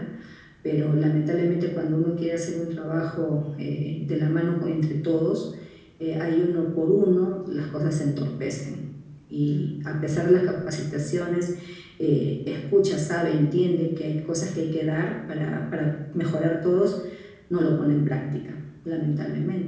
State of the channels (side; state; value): both; identical; correlation 1.00